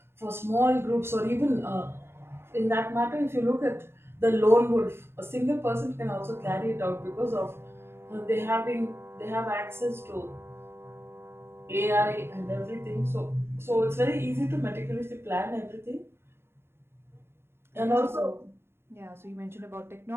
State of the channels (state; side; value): late; left; 0.12 ms